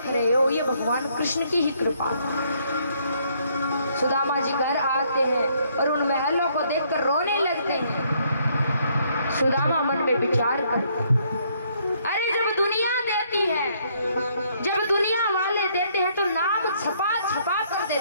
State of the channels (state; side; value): inverted; both; correlation -0.68